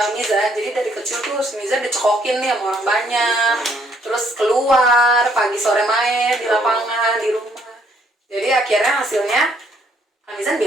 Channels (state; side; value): normal; both; correlation 0.67